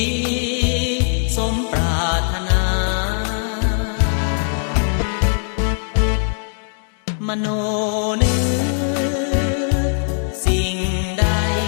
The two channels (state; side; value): silent; right; 66 dB below the other